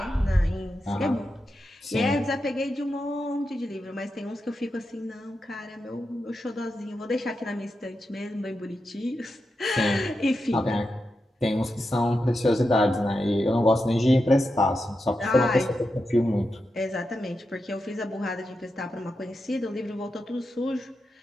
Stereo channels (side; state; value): both; normal; correlation 0.88